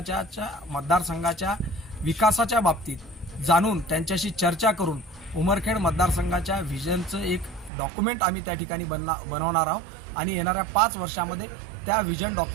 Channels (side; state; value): left; drops out; at 7.7 s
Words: विकासाच्या बाबतीत जाणून त्यांच्याशी चर्चा करून उमरखेड मतदारसंघाच्या विजनचं एक डॉक्युमेंट आम्ही त्या ठिकाणी बनवणार आहोत आणि येणाऱ्या 5 वर्षामध्ये त्या विजन